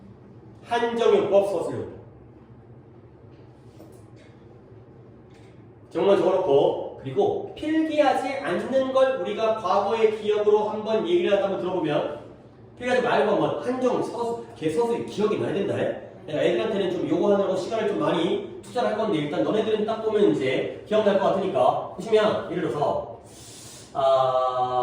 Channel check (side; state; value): both; identical; correlation 1.00